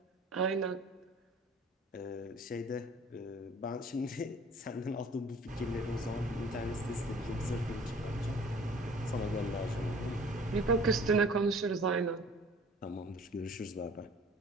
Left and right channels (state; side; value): normal; both; correlation 0.49